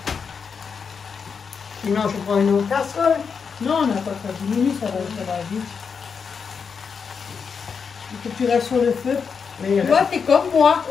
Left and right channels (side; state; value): right; quieter; 6.0 dB